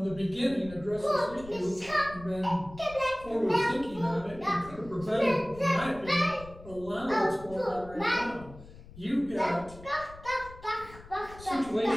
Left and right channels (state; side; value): noise; left; rumble, 18 dB below the sound